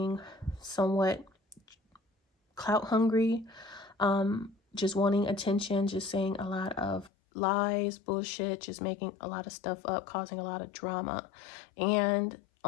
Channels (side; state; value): right; drops out; at 7.1 s